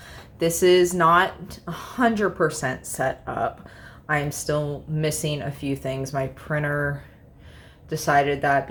this is not 100% set up. I'm still missing a few things. My printer decided that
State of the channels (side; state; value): both; identical; correlation 1.00